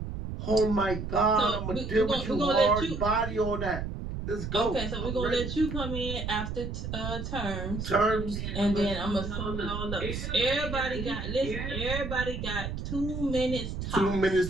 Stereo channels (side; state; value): right; noise; rumble, 5 dB below the sound